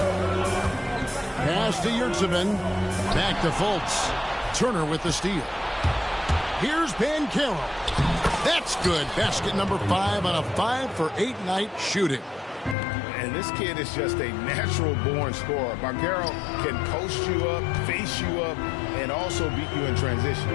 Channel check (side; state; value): right; drops out; at 12.8 s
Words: Pass to Yurtseven. Back to Fultz. Turner with the steal. Here's Banchero. That's good. Basket number 5 on a 5 for 8 night shooting. And this kid is just a natural-born scorer. Banchero can post you up, face you up, and also beat you in transition.